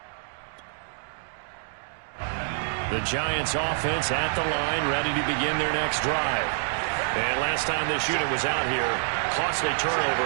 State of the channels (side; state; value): left; silent; digital silence